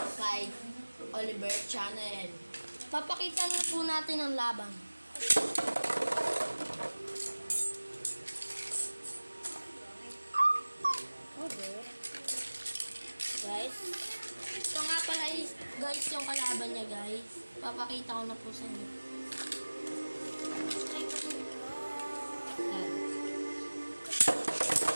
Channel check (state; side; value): inverted; both; correlation -1.00